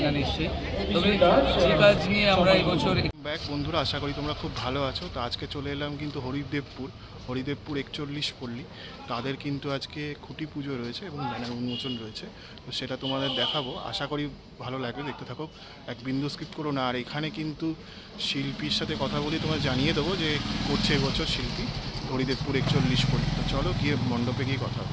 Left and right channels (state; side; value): identical; both; correlation 1.00